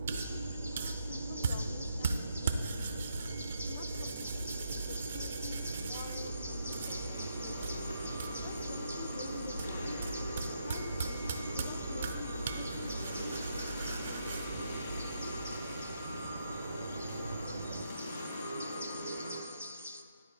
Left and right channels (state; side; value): inverted; both; correlation -0.78